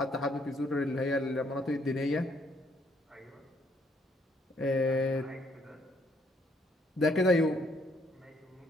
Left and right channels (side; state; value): both; normal; correlation 0.68